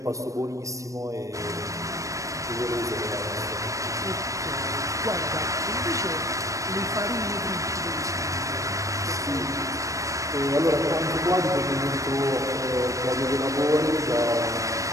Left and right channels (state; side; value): late; left; 0.16 ms